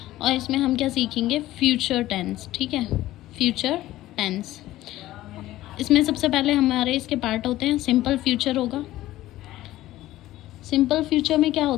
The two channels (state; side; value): quieter; right; 15.5 dB